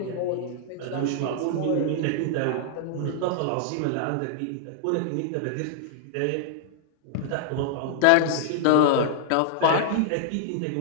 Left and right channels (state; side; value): different; both; correlation -0.01